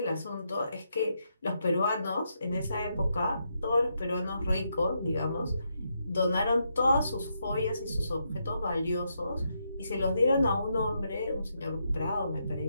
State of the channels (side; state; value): both; inverted; correlation -0.80